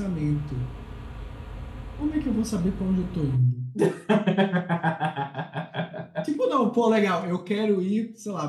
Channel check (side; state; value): both; identical; correlation 1.00